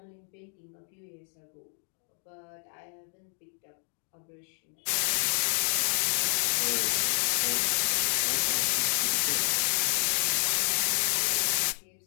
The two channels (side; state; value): right; silent; 59 dB below the other